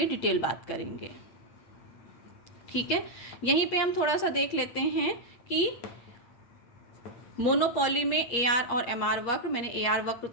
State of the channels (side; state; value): right; late; 8.5 ms